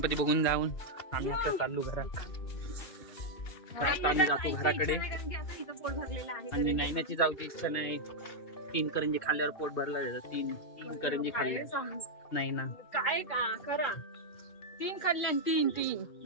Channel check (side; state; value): right; late; 2.5 ms